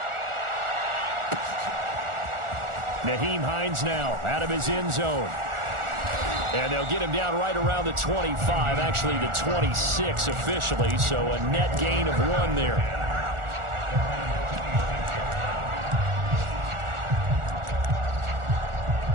Nyheim Hines now out of his end zone. And they'll get him down right around the 25, actually the 26 officially, so a net gain of 1 there.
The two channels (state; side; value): late; left; 1.4 ms